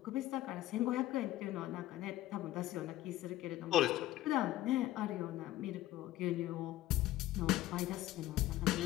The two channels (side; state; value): right; quieter; 14.9 dB